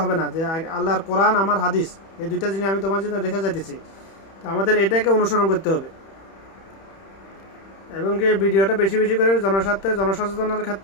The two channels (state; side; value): late; right; 31 ms